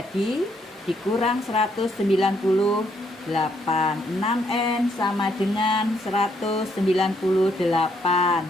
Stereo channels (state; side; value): normal; both; correlation 0.72